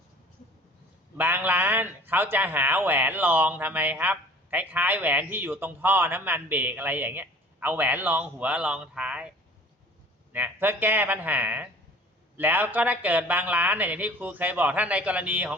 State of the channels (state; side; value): normal; both; correlation 0.47